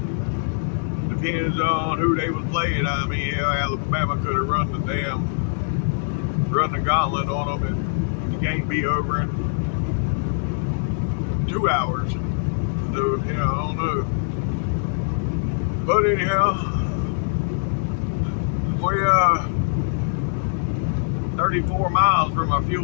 depends on who they was playing. I mean, yeah, Alabama could have run the gauntlet on them, and the game be over in 2 hours. So, you know, I don't know. But anyhow, we 34 miles from our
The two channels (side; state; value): right; silent; digital silence